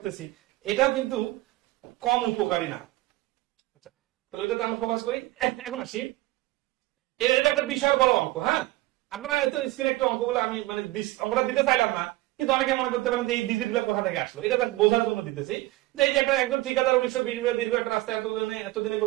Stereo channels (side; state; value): left; quieter; 18.9 dB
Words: এটাও কিন্তু কম উপকারী না। আচ্ছা, তাহলে ওইটাতে আমরা ফোকাস করি। এখন আসি, এটা একটা বিশাল বড় অঙ্ক। হ্যাঁ, আপনারা হয়তো স্ক্রিনে একটু অঙ্কগুলো আমি মানে অঙ্কটা দিতে চাইলাম না, কিন্তু অনেকে মনে করতে পারেন যে এই ডিজিট গুলো কোথা থেকে আসলো। এটা জাস্ট বোঝার জন্য দিতেছি যে এই যে একটা একজন ঠিকাদার 1920 দীর্ঘ একটা রাস্তা এতদিনে